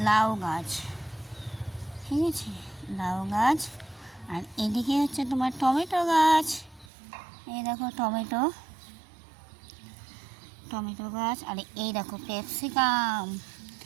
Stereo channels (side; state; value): left; drops out; at 6.9 s